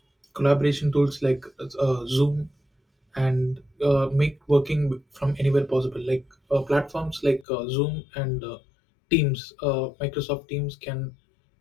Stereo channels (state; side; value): drops out; right; at 7.5 s